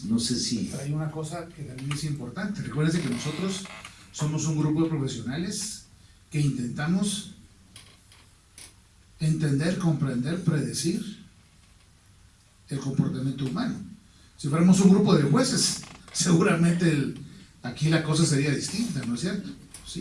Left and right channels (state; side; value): identical; both; correlation 1.00